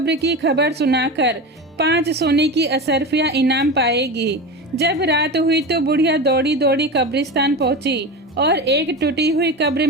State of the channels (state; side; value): normal; both; correlation 0.25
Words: की खबर सुनाकर 5 सोने की असरफियां इनाम पाएगी। जब रात हुई तो बुढ़िया दौड़ी दौड़ी कब्रिस्तान पहुंची और एक टूटी हुई कब्र